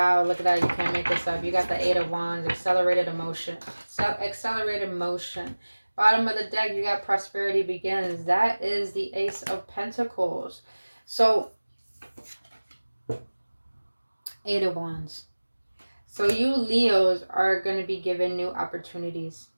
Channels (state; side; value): inverted; both; correlation -1.00